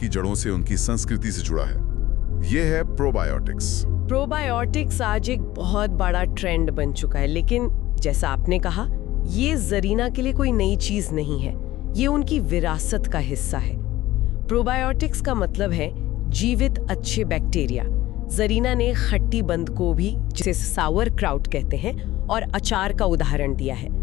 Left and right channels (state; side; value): quieter; right; 16.2 dB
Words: जड़ों से उनकी संस्कृति से जुड़ा है। ये है प्रोबायोटिक्स। प्रोबायोटिक्स आज एक बहुत बड़ा ट्रेंड बन चुका है, लेकिन जैसा आपने कहा, ये जरीना के लिए कोई नई चीज नहीं है, ये उनकी विरासत का हिस्सा है। प्रोबायोटिक्स का मतलब है जीवित अच्छे बैक्टीरिया। जरीना ने खट्टी बंद को भी, जिसे सावर क्राउट कहते हैं, और अचार का उदाहरण दिया है।